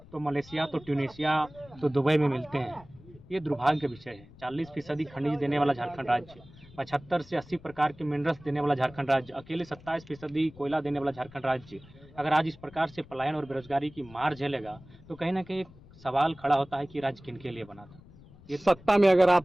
तो मलेशिया, तो ट्यूनीशिया, तो दुबई में मिलते हैं। ये दुर्भाग्य का विषय है। 40% खनिज देने वाला झारखंड राज्य, 75 से 80 प्रकार के मिनरल्स देने वाला झारखंड राज्य, अकेले 27% कोयला देने वाला झारखंड राज्य अगर आज इस प्रकार से पलायन और बेरोजगारी की मार झेलेगा तो कहीं ना कहीं एक सवाल खड़ा होता है कि राज्य किनके लिए बना था। ये सत्ता में अगर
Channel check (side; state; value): left; noise; rumble, 22 dB below the sound